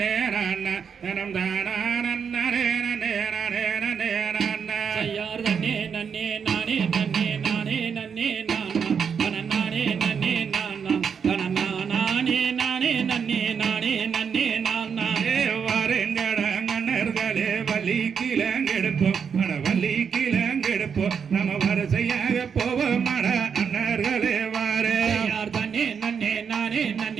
நன்ன தனம் தானா நன்னே நன்னே நன்னே நன்னே நன்ன ஐயார் தன்னே நன்னே நானே நன்னே நானே நன்னே நானா தன நானே நன்னே நானா தன நானே நானே நன்னே நானே நன்னே நானா வாருங்கடங்கண்ணர்களே வள்ளி கிழங்கெடுப்போம் அட வள்ளி கிழங்கெடுப்போம் நம்ம வரிசையாக போவோம் அட அண்ணர்களே வாரே ஐயார் தன்னே நன்னே நானே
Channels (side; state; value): left; quieter; 6.7 dB